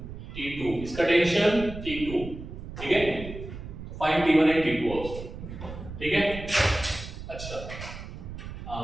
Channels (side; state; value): right; noise; rumble, 10 dB below the sound